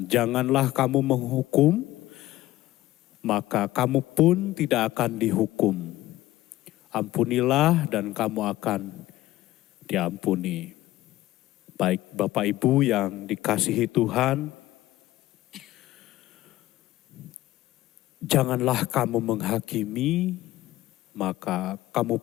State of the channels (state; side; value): quieter; right; 16.1 dB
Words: janganlah kamu menghukum, maka kamu pun tidak akan dihukum. Ampunilah dan kamu akan diampuni. Baik Bapak Ibu yang dikasihi Tuhan, janganlah kamu menghakimi, maka kamu